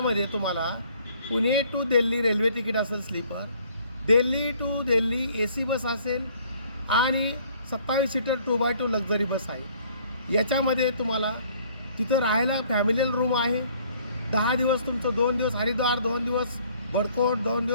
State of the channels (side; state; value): both; inverted; correlation -0.59